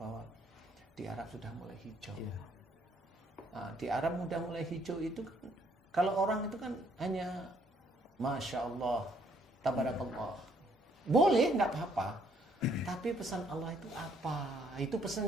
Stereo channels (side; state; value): both; normal; correlation 0.67